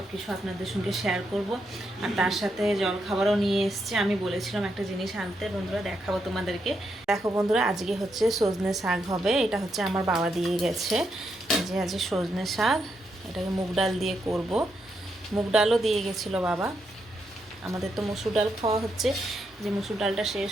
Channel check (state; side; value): normal; both; correlation 0.81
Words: কিছু আপনাদের সঙ্গে শেয়ার করব। আর তার সাথে জল খাবারও নিয়ে এসছে। আমি বলেছিলাম একটা জিনিস আনতে, বন্ধুরা দেখাবো তোমাদেরকে। দেখো বন্ধুরা, আজকে হচ্ছে সজনে শাক হবে। এটা হচ্ছে আমার বাবা দিয়ে গেছে, যে আজকে সজনে শাক, এটাকে মুগ ডাল দিয়ে করব। মুগ ডালও দিয়ে গেছিলো বাবা। আমাদের তো মসুর ডাল খাওয়া হচ্ছে, যে মসুর ডালটা শেষ